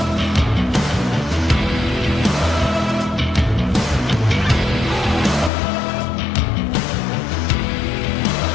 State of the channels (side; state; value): right; drops out; at 5.5 s